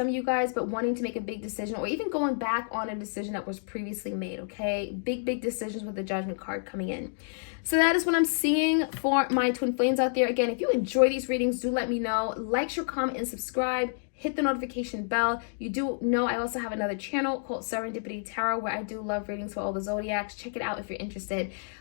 of you guys, but wanting to make a big decision or even going back on a decision that was previously made, okay? Big decisions with the Judgment card coming in. So that is what I'm seeing for my twin flames out there. Again, if you enjoy these readings, do let me know. Like, share, comment, and subscribe. Hit the notification bell. You do know I also have another channel called Serendipity Tarot where I do love readings for all the zodiacs. Check it out if you're interested.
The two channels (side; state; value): right; silent; digital silence